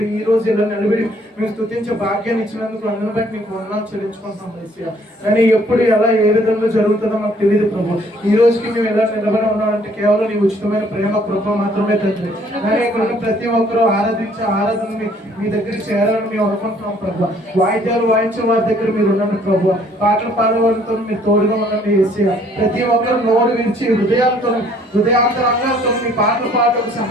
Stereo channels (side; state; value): both; normal; correlation 0.61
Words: ఈ రోజు ఇలా నిలబడి మేము స్తుతించే భాగ్యాన్ని ఇచ్చినందుకు అందరిని బట్టి మీకు వందనాలు చెల్లించుకుంటున్నాం యేసయ్యా. కానీ ఎప్పుడు ఎలా ఏ విధంగా జరుగుతుందో మాకు తెలియదు ప్రభు. ఈ రోజుకి మేము ఎలా నిలబడి ఉన్నామంటే కేవలం నీ ఉచితమైన ప్రేమ కృప మాత్రమే తండ్రి. కానీ ఇక్కడ ఉన్న ప్రతి ఒక్కరూ ఆరాధించే ఆరాధన మీ దగ్గరికి చేరాలని మేము అనుకుంటున్నాం ప్రభు. వాయిద్యాలు వాయించే వారి దగ్గర మీరు ఉండండి ప్రభు. పాటలు పాడేవారితో మీరు తోడుగా ఉండండి యేసయ్యా. ప్రతి ఒక్కరు నోరు విరిచి హృదయాంతరంగాలతో మీ పాటలు పాటకు